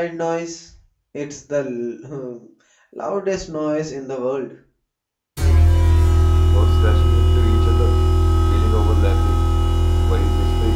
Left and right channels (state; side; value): identical; both; correlation 1.00